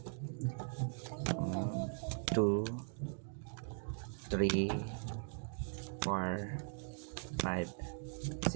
2, 3, 4, 5,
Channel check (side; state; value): left; silent; 51 dB below the other